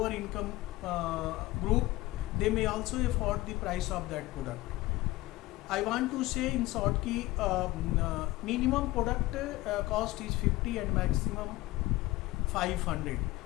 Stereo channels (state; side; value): quieter; right; 18.8 dB